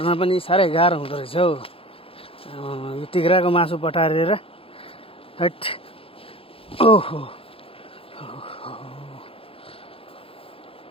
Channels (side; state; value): right; late; 0.27 ms